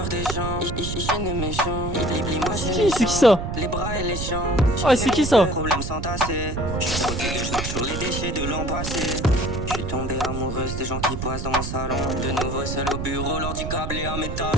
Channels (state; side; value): noise; right; rumble, 4 dB below the sound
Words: des gens, je ne méchant. C'est qui ça? Les bras et les jambes. Ah, c'est qui ça? Problème sans tasser. Je suis protégé, je marche sur les déchets de l'an passé. Je suis tombé amoureuse des gens qui passent dans mon salon. De nouveau seul au bureau, l'ordi câblé à mes talons.